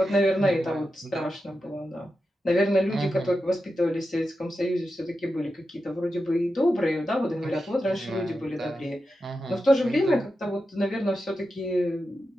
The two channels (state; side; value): normal; both; correlation 0.90